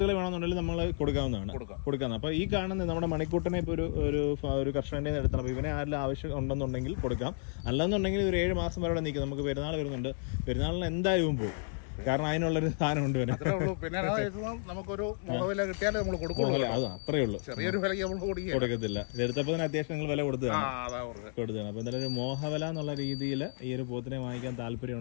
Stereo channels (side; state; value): right; silent; 56 dB below the other